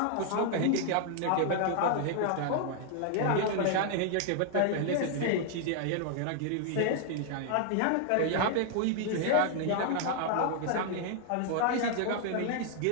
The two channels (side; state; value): both; different; correlation 0.00